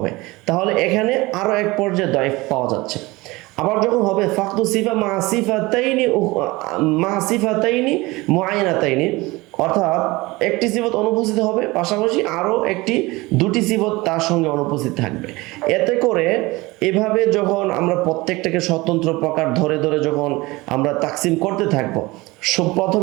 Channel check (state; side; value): quieter; left; 21.8 dB